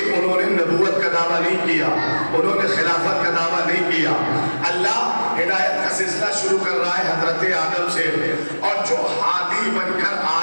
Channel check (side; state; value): both; inverted; correlation -1.00